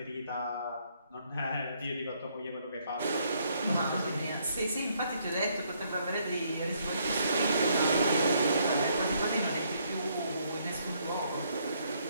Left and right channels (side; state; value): both; inverted; correlation -0.70